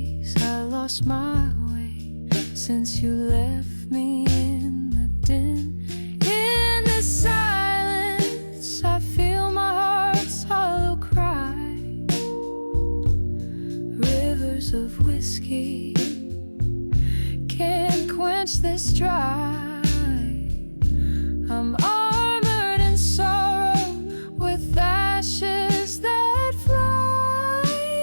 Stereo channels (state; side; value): inverted; both; correlation -1.00